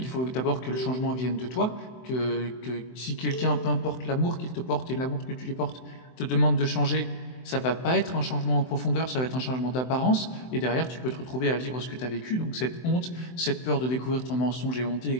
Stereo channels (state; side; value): late; right; 24 ms